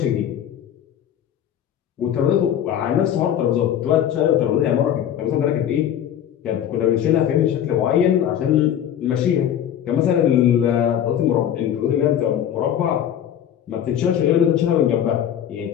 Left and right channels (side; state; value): right; quieter; 10.0 dB